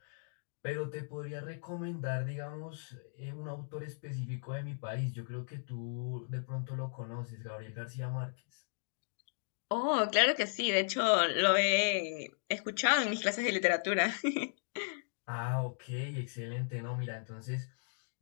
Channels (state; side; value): silent; right; digital silence